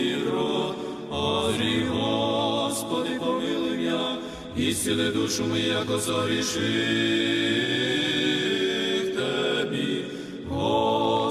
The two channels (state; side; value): identical; both; correlation 1.00